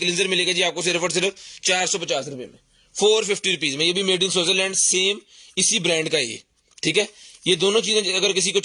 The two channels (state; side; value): identical; both; correlation 1.00